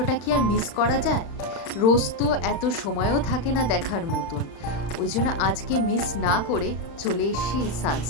কি আর মিস করা যায়? রোজ তো এত সময়ও থাকে না দেখার মতন, ওই জন্য আজকে মিস না করে চলে এসছি এই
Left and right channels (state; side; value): late; right; 35 ms